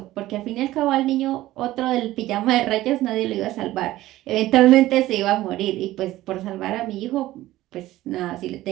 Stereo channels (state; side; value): quieter; left; 15.9 dB